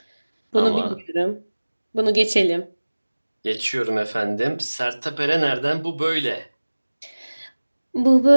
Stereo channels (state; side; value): inverted; both; correlation -1.00